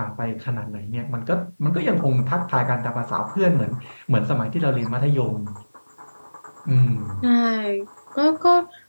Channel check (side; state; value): both; inverted; correlation -1.00